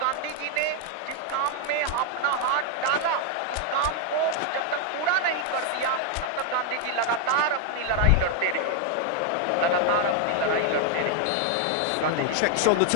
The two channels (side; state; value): both; different; correlation 0.00